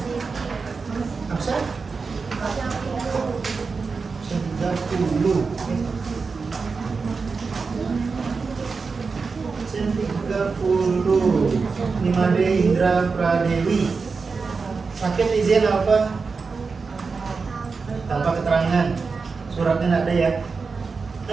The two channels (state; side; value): quieter; left; 4.7 dB